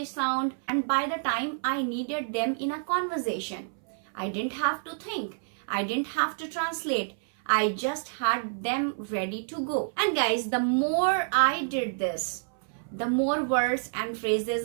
sound, and by the time I needed them in a conversation, I didn't have to think. I didn't have to translate. I just had them ready to go. And guys, the more I did this, the more words and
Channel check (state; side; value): silent; left; 59 dB below the other